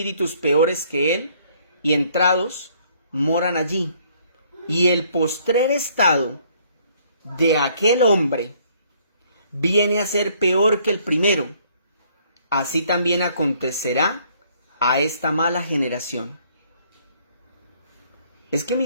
peores que él, y entrados moran allí. Y el postrer estado de aquel hombre viene a ser peor que el primero. Así también acontecerá a esta mala generación. Es que,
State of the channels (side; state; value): both; inverted; correlation -0.63